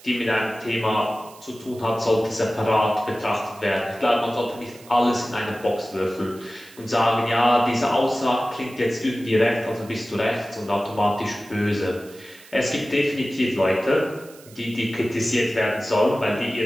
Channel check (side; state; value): right; noise; hiss, 22 dB below the sound